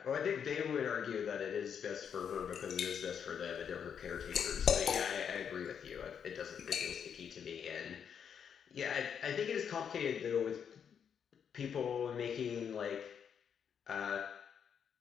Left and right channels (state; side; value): quieter; right; 7.6 dB